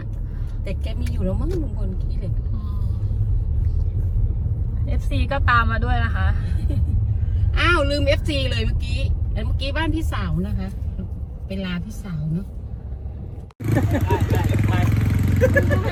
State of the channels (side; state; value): both; identical; correlation 1.00